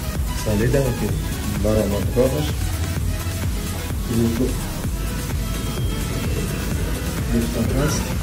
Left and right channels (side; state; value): both; identical; correlation 1.00